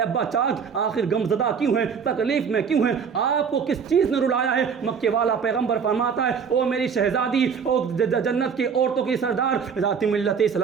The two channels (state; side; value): quieter; left; 6.5 dB